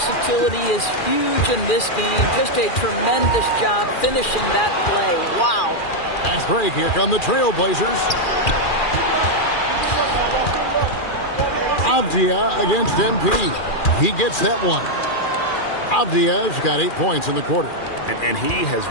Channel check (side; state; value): right; late; 2.4 ms